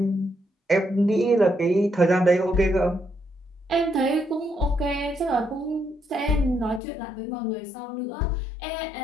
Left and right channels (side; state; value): right; drops out; at 6.8 s